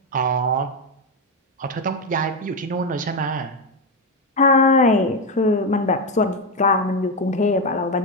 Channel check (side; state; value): both; normal; correlation 0.09